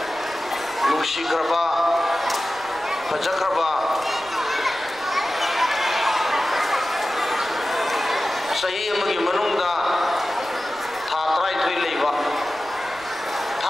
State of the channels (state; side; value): noise; right; rumble, 26 dB below the sound